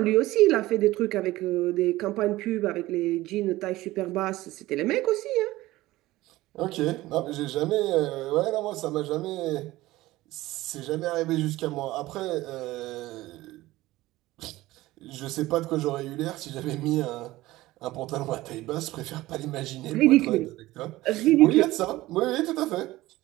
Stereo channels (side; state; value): left; quieter; 17.7 dB